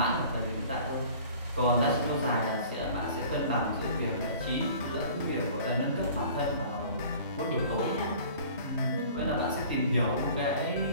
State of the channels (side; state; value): both; inverted; correlation -0.47